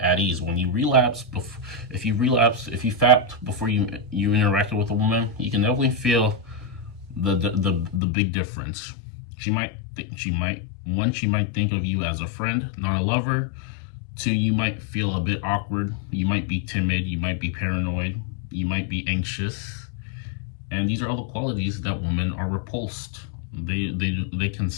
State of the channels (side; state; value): right; drops out; at 8.0 s